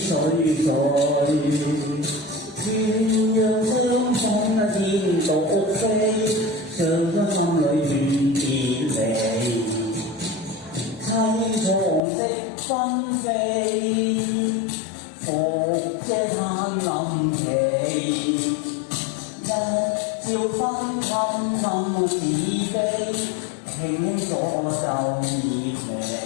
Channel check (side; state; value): right; drops out; at 12.0 s